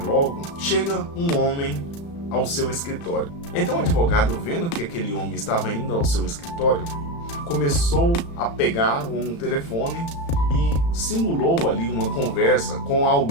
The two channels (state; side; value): late; right; 35 ms